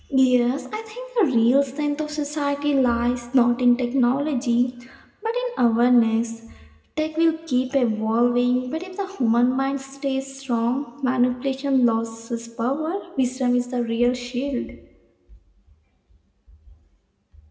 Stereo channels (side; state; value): both; identical; correlation 1.00